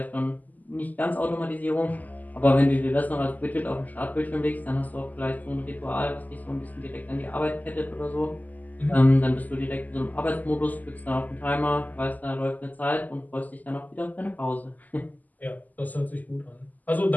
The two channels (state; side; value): late; right; 0.081 ms